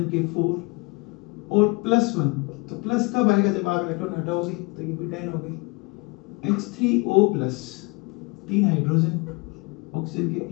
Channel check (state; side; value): quieter; right; 27.7 dB